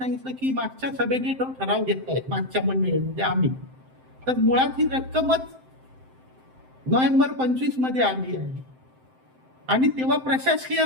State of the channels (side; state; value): left; late; 7.7 ms